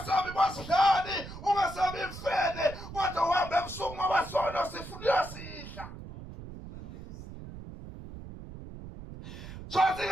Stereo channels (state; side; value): noise; right; rumble, 12 dB below the sound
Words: kwasidlani ungasabi imfene kodwa uhamba ebusuku ngoba sono sifuna sidla. Sothi